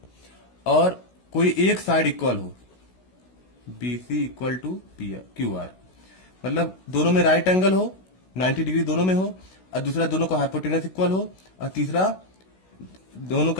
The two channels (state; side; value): late; right; 16 ms